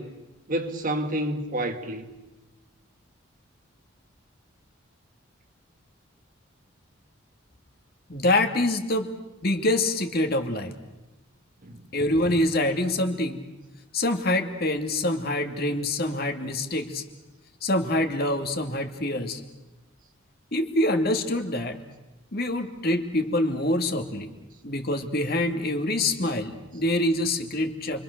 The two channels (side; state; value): both; normal; correlation 0.34